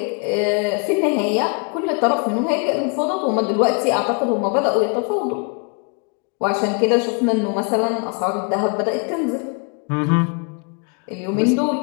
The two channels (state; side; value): quieter; right; 35.5 dB